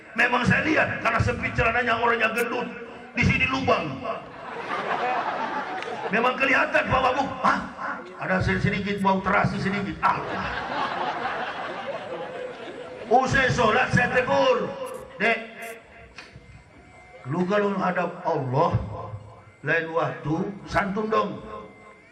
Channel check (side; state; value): both; identical; correlation 1.00